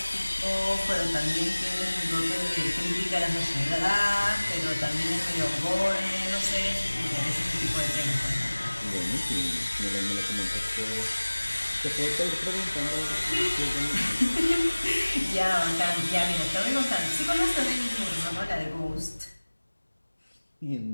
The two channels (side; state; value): both; inverted; correlation -1.00